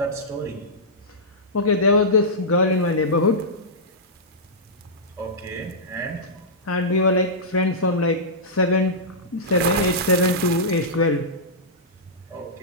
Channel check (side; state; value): both; normal; correlation -0.13